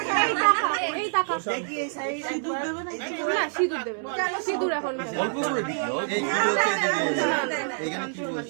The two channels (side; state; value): left; silent; 61 dB below the other